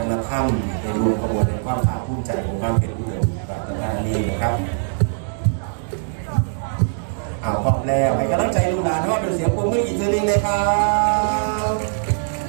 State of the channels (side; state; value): left; silent; digital silence